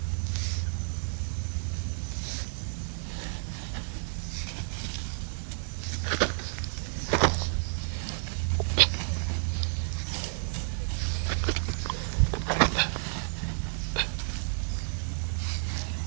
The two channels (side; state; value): left; silent; digital silence